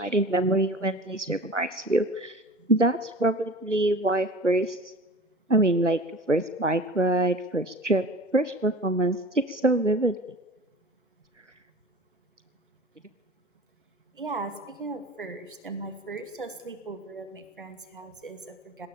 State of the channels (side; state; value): both; normal; correlation 0.39